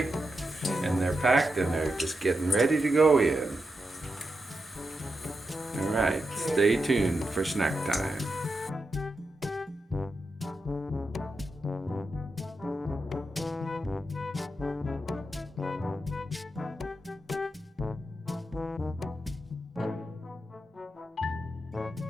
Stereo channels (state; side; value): normal; both; correlation 0.87